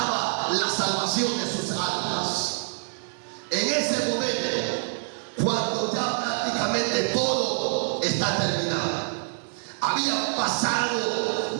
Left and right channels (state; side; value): silent; left; digital silence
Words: la salvación de sus almas. En ese momento, cuando ya prácticamente todo está terminado, había pasado